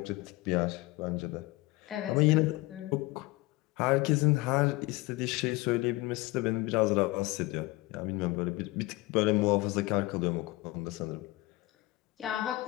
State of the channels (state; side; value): quieter; right; 20.8 dB